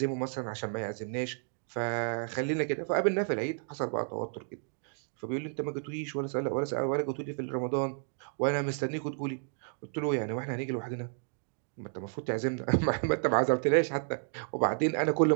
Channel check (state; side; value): silent; left; 57 dB below the other